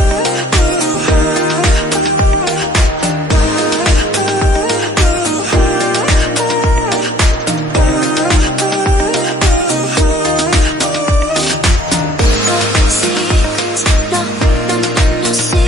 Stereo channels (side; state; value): both; normal; correlation 0.59